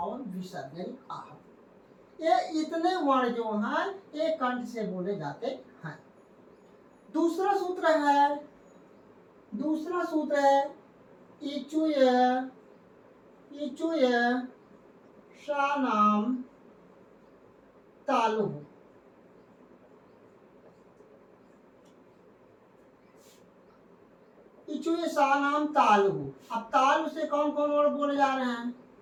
विसर्ग यानी आह। ये इतने वर्ण जो हैं ये कंठ से बोले जाते हैं। दूसरा सूत्र है इचुय शानाम तालु। इचुय शानाम तालु। अब तालु से कौन कौन वर्ड बोले जा रहे हैं?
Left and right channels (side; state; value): both; identical; correlation 1.00